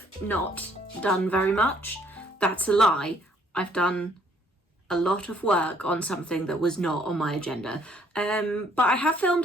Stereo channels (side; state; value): both; normal; correlation 0.64